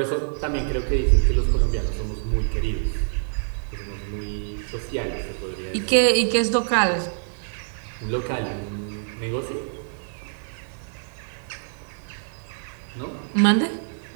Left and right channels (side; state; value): left; silent; digital silence